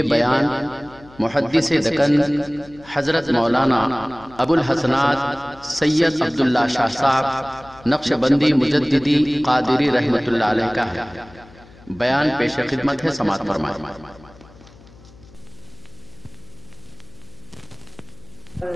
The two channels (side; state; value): left; noise; hum, 24 dB below the sound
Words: بیان محدث دکن حضرت مولانا ابو الحسنات سید عبداللہ شاہ صاحب نقشبندی مجددی قادری رحمۃ اللہ علیہ کا ہے۔ بیان پیش خدمت ہے، سماعت فرمائیں۔